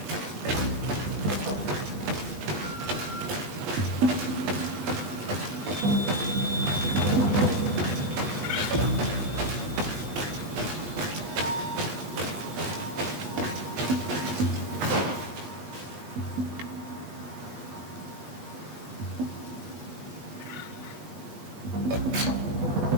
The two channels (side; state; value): left; late; 8.3 ms